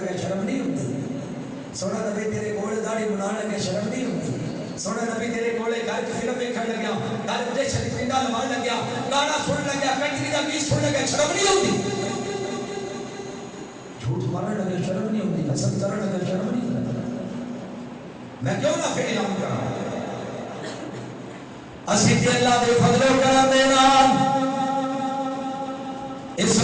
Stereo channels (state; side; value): identical; both; correlation 1.00